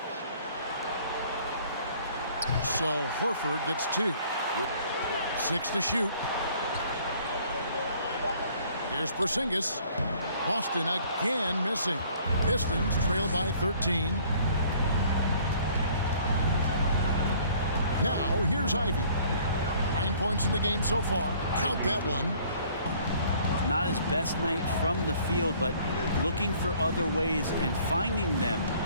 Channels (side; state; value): both; inverted; correlation -0.57